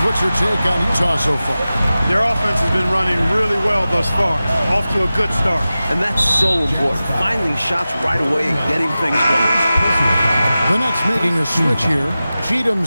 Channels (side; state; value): both; inverted; correlation -0.95